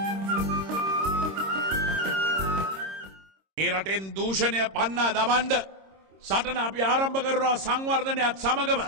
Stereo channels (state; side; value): late; left; 26 ms